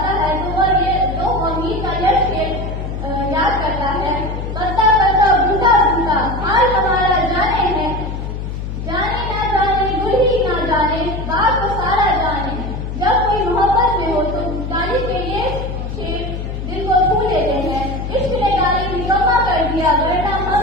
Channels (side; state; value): left; noise; hum, 5 dB below the sound